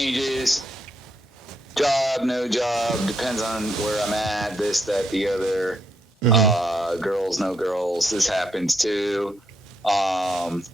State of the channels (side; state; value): both; normal; correlation 0.78